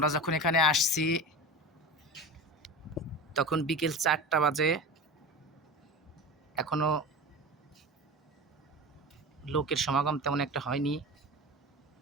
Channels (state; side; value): normal; both; correlation 0.30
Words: যখন এখানে আসছি তখন বিকেল 4টা বাজে। এখনো লোকের সমাগম তেমন একটা হয়নি,